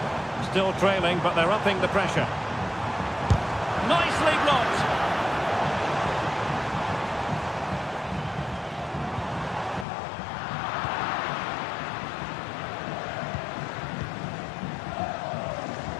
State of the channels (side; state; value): right; drops out; at 9.9 s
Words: Still trailing, but they're upping the pressure. Nicely blocked.